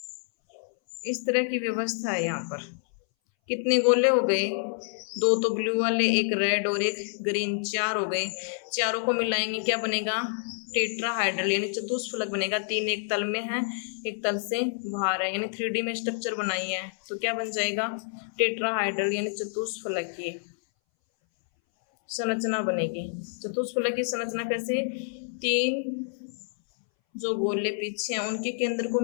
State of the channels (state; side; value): silent; right; 59 dB below the other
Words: इस तरह की व्यवस्था है यहाँ पर। कितने गोले हो गए, 2 तो ब्लू वाले, एक रेड और एक ग्रीन, 4 हो गए। चारों को मिलाएंगे क्या बनेगा, टेट्राहाइड्रल यानी चतुष्फलक बनेगा। 3 एक तल में है, एक तल से बाहर है, यानी 3D में स्ट्रक्चर बनाई है, तो क्या बन जाएगा, टेट्राहाइड्रल यानी चतुष्फलक की संरचना बनेगी। चतुष्फलक की संरचना कैसे, 3 जो गोले पीछे हैं उनके केंद्र को